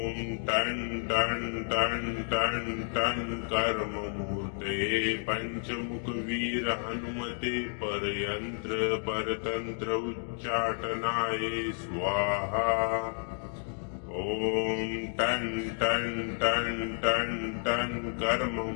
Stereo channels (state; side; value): silent; right; 57 dB below the other